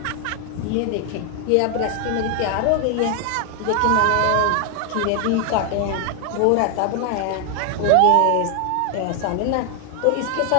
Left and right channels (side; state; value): both; different; correlation 0.00